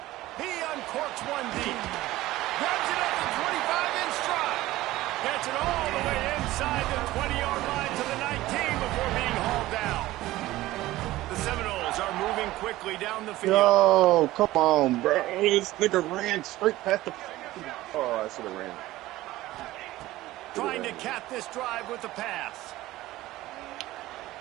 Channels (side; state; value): left; quieter; 16.8 dB